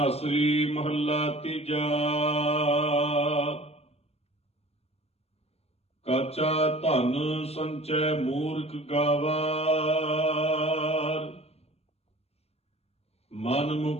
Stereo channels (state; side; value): late; right; 0.30 ms